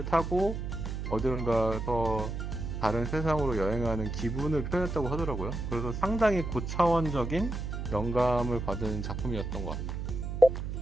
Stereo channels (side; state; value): right; noise; hum, 4 dB below the sound